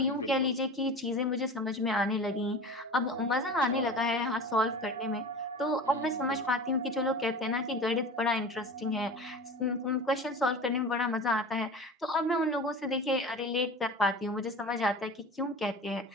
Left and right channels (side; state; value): both; normal; correlation 0.34